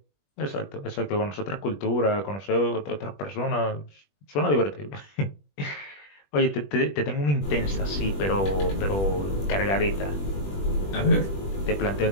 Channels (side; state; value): right; late; 21 ms